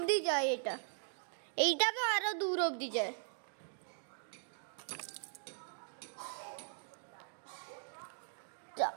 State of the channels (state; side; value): silent; left; digital silence